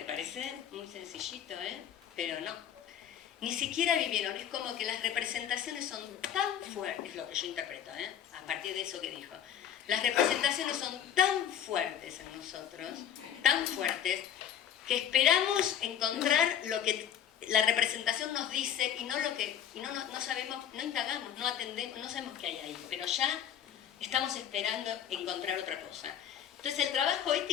parece muy sencillito, pero no. Ni siquiera vivieron, es como que las representaciones son tan fuertes, es lo que yo interpreto, a partir de eso que dijo. Las representaciones son tan fuertes en nosotros, tan fuertes, que esperamos encontrar lo que la representación nos dice y no sabemos, no indagamos, no atendemos, no sabemos qué hay ahí, pero ya estamos esperando encontrar otra cosa. Entonces el trabajo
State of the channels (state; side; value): quieter; right; 9.6 dB